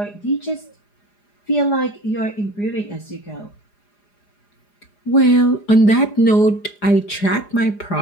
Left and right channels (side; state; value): right; late; 4.9 ms